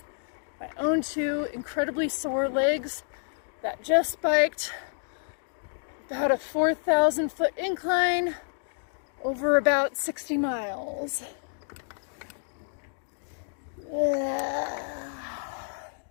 My own 2 incredibly sore legs that just biked about a 4,000 foot incline over about 60 miles. Yeah.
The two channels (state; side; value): silent; right; digital silence